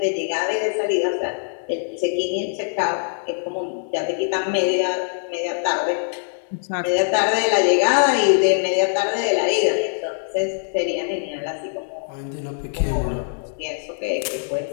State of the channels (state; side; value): silent; right; digital silence